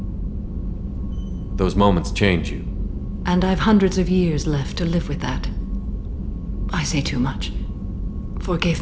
Those moments change you. And I've hundreds of years left to live with that. I say too much. Forgive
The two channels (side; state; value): both; identical; correlation 1.00